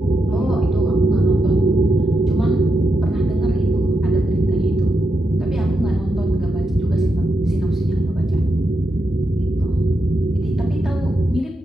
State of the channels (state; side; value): normal; both; correlation 0.85